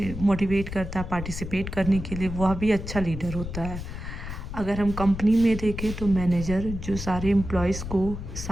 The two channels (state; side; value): noise; left; rumble, 8 dB below the sound